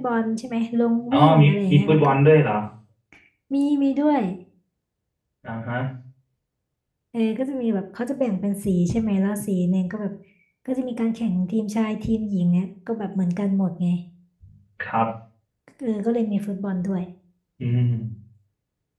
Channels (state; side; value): identical; both; correlation 1.00